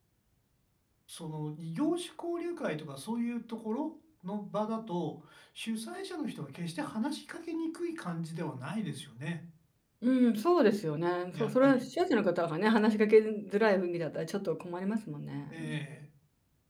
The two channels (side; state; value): both; identical; correlation 1.00